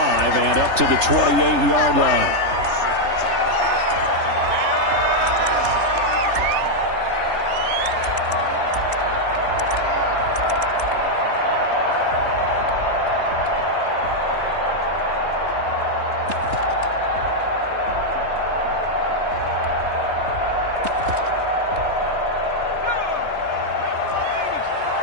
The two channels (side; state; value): left; late; 3.3 ms